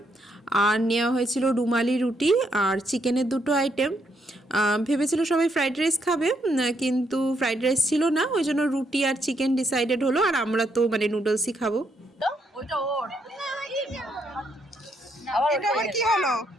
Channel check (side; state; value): both; normal; correlation 0.76